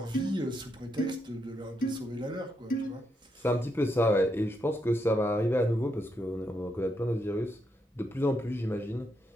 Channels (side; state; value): both; normal; correlation 0.80